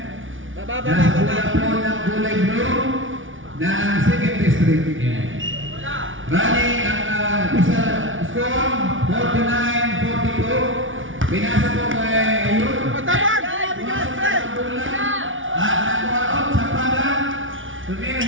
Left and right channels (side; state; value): left; late; 0.57 ms